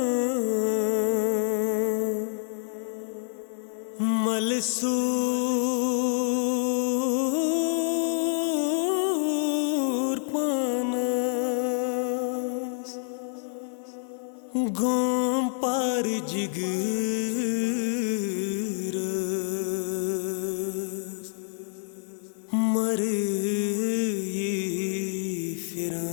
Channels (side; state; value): right; silent; 56 dB below the other